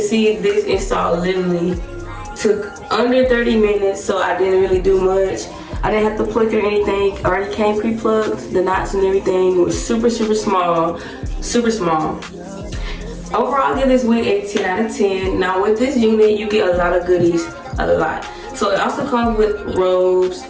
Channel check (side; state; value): both; identical; correlation 1.00